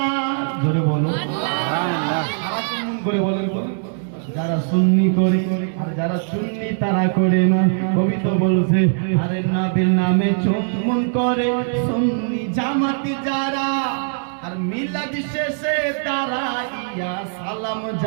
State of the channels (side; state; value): left; silent; digital silence